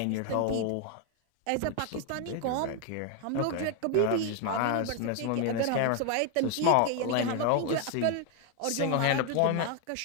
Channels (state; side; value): different; both; correlation 0.01